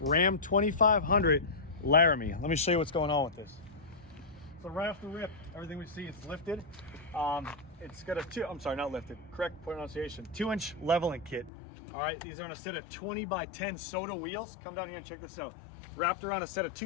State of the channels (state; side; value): drops out; right; at 11.5 s